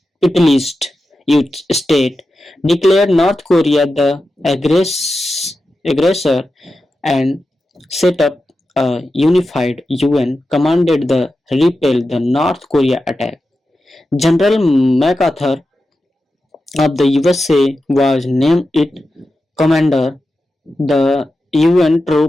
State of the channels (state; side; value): normal; both; correlation 0.91